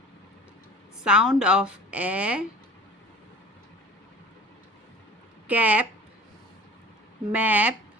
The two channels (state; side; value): normal; both; correlation 0.43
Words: Sound of A. Cap, map,